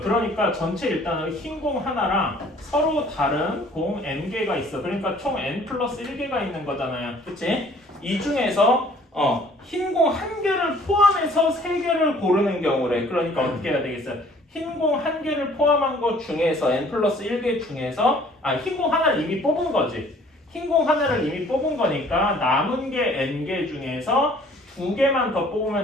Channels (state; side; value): normal; both; correlation 0.55